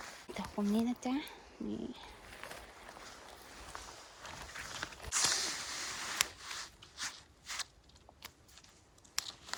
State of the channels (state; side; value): identical; both; correlation 1.00